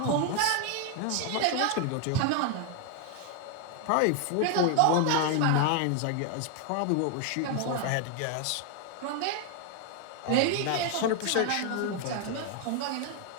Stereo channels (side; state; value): both; different; correlation 0.00